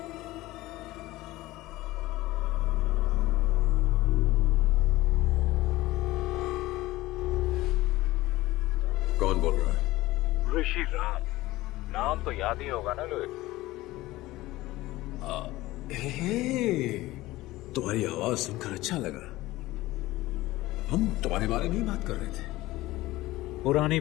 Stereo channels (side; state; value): right; quieter; 18.0 dB